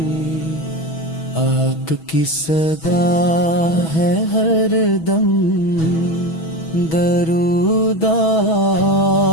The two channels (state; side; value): late; right; 6.2 ms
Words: آپ کی صدا ہے ہر دم درود